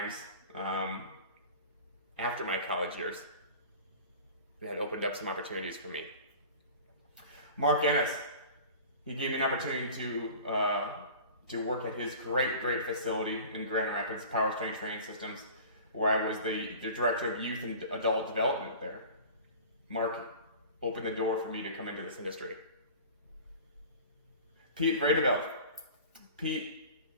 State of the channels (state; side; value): inverted; both; correlation -0.40